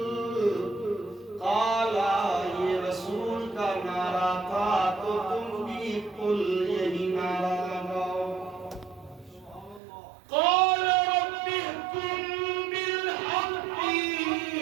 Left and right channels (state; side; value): drops out; left; at 9.8 s